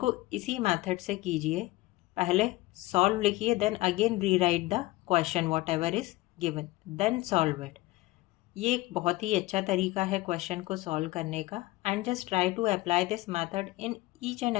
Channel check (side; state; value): right; quieter; 19.2 dB